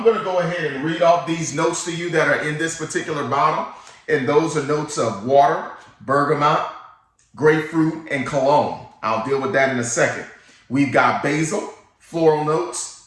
going to go ahead and read off these notes to you that are in this particular bottle. And those are notes of water, bergamot, grapefruit, and cologne. I'll deal with that in a second. We've got basil, floral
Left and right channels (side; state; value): both; identical; correlation 1.00